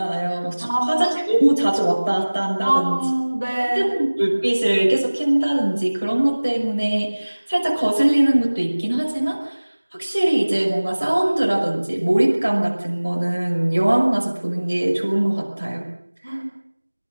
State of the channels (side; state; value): both; inverted; correlation -1.00